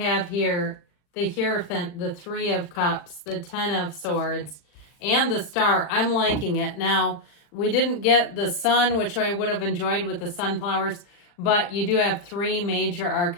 here the Hierophant, the Three of Cups, the Ten of Swords, and the Star. I'm liking it. Now, we didn't get the sun, which I would have enjoyed with the sunflowers, but you do have three major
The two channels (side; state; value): right; late; 40 ms